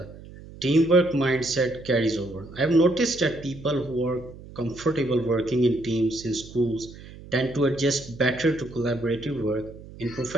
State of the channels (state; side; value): noise; right; hum, 17 dB below the sound